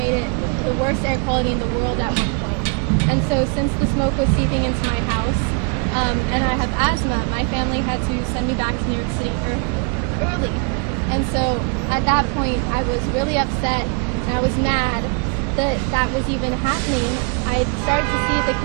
it the worst air quality in the world at one point. And so since the smoke was seeping into my house, and I have asthma, my family had to send me back to New York City early. And so at that point, I was really upset, and I was mad that that was even happening. I started to see the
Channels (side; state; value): left; quieter; 34.3 dB